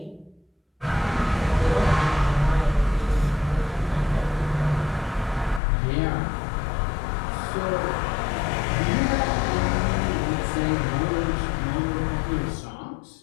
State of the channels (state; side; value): drops out; right; at 5.6 s